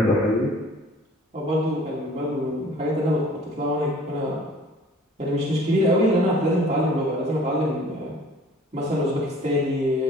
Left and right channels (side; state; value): both; normal; correlation 0.50